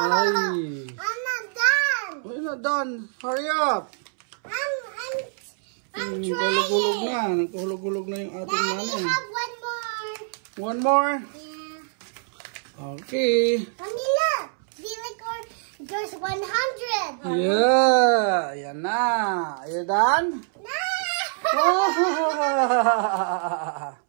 I'm not done. Oh, you're not done. Hurry up. I'm trying. Hulog-hulog na. Nagkuhulog-hulog na yung ating Daddy, money. have one more. One more? Yeah. Okay. Mommy, look. There's 100. Yeah. Yan na. Are you done? No.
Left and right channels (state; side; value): silent; left; 62 dB below the other